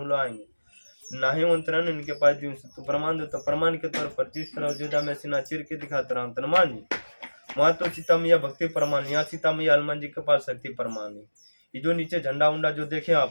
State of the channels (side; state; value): both; inverted; correlation -1.00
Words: लोग आएंगे नाही मंत्रण इनके पास दिन से तो प्रमाण दो। तो प्रमाण के तौर पर जिस तरह अयोध्या में सीना चीर के दिखाता रहा हनुमान जी, वहाँ तो सीता मैया भक्ति प्रमाण, यहाँ सीता मैया हनुमान जी के पास शक्ति प्रमाण है। ये जो नीचे झंडा उंडा जो देखे